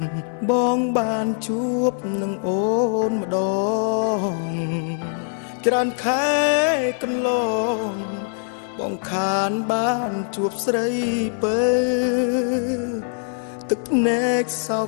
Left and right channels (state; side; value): silent; right; 64 dB below the other